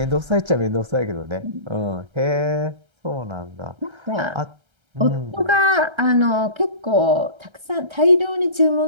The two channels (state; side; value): late; left; 1.3 ms